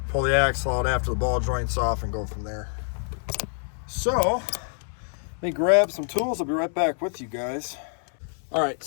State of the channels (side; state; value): right; silent; 61 dB below the other